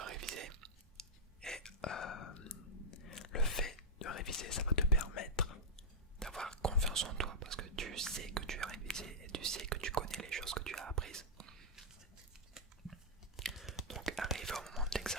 réviser. Et le fait de réviser, ça va te permettre d'avoir confiance en toi parce que tu sais que tu as révisé et tu sais que tu connais les choses que tu as apprises. Donc arrivé au moment de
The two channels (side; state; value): both; normal; correlation -0.08